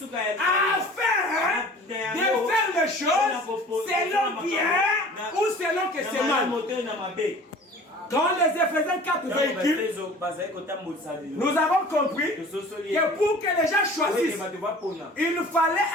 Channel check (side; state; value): both; normal; correlation 0.45